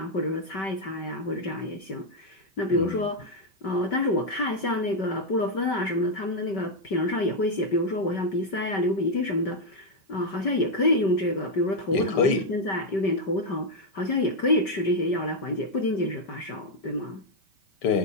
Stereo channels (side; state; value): right; late; 5.2 ms